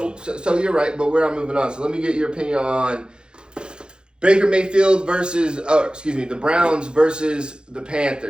so you're right, but we're not moving on. So let me get your opinion on Baker Mayfield the Browns versus the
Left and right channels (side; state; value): left; late; 0.049 ms